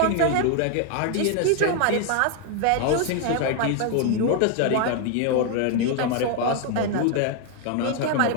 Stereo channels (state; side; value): different; both; correlation 0.00